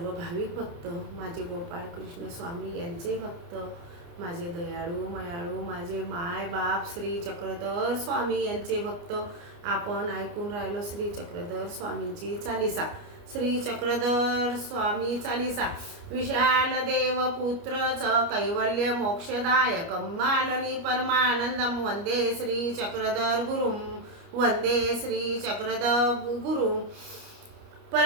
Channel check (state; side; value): late; left; 29 ms